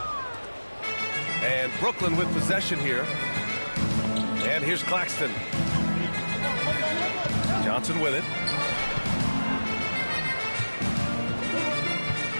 And Brooklyn with possession here. And here's Claxton. Johnson with it.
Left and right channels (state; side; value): inverted; both; correlation -1.00